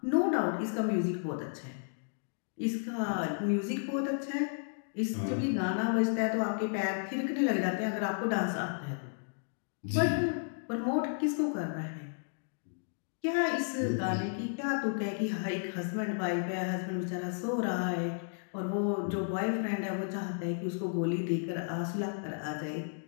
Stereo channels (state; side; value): silent; right; digital silence